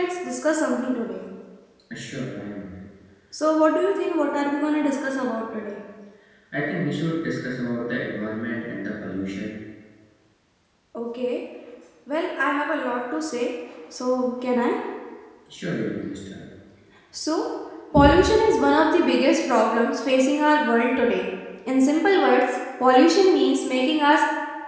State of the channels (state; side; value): identical; both; correlation 1.00